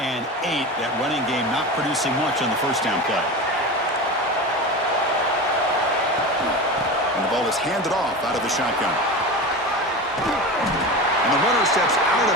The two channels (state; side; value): normal; both; correlation 0.27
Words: 8. That running game not producing much on the first down play. And the ball is handed off out of the shotgun. And the runner steps out